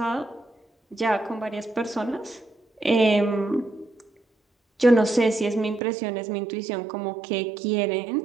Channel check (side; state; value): left; drops out; at 5.8 s